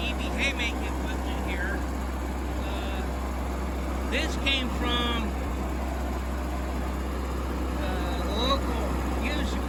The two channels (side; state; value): both; identical; correlation 1.00